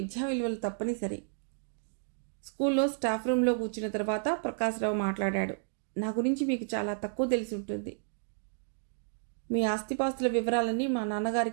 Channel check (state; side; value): silent; left; digital silence